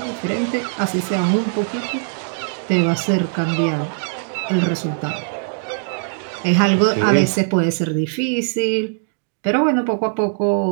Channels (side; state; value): left; silent; digital silence